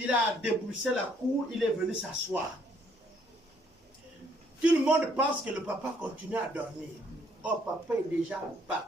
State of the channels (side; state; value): both; normal; correlation 0.66